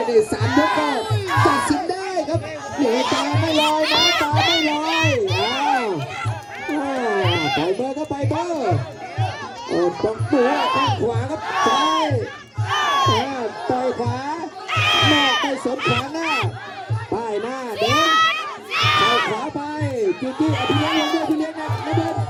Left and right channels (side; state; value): both; identical; correlation 1.00